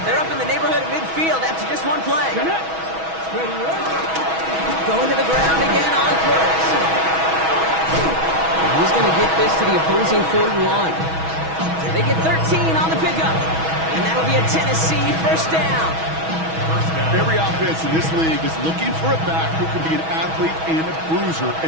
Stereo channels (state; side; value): late; left; 6.2 ms